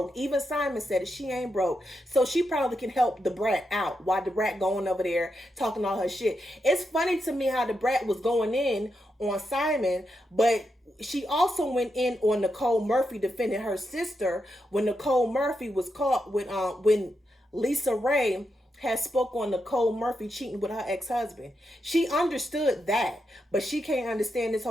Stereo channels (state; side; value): normal; both; correlation 0.85